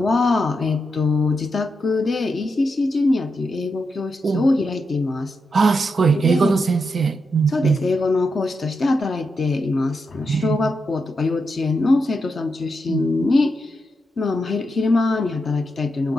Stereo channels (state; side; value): normal; both; correlation 0.85